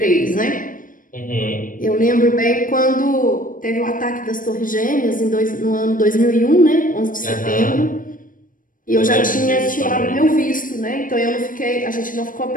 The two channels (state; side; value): late; right; 0.39 ms